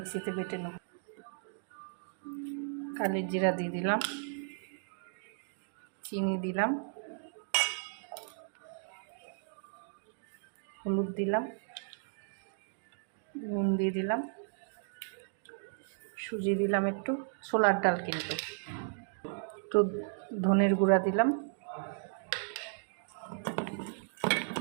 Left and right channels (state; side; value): silent; left; digital silence